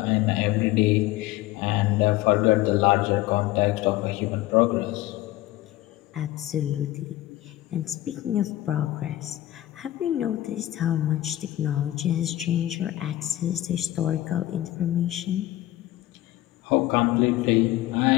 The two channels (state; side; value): quieter; right; 15.6 dB